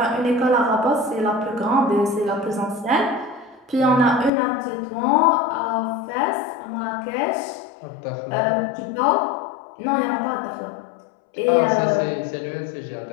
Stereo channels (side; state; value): right; drops out; at 4.3 s